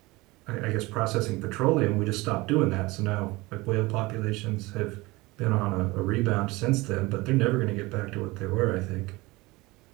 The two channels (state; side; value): quieter; left; 22.0 dB